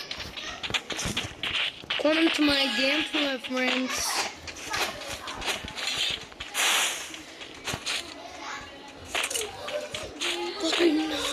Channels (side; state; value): both; identical; correlation 1.00